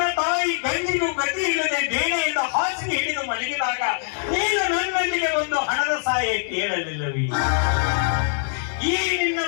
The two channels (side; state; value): right; silent; digital silence